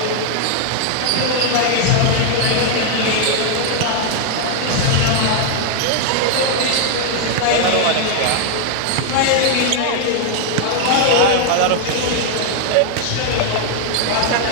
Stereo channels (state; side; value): different; both; correlation 0.00